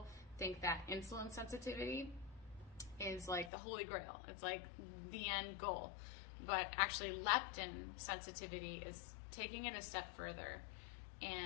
think that insulin sensitivity is like the holy grail. It's like the end goal. But actually leptin sensitivity is taking it a step further.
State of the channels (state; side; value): drops out; right; at 3.5 s